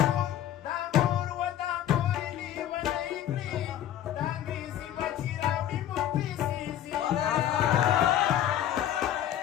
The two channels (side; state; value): right; quieter; 11.4 dB